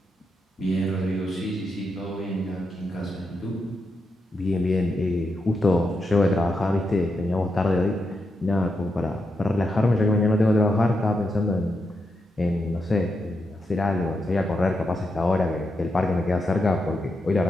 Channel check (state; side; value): normal; both; correlation 0.85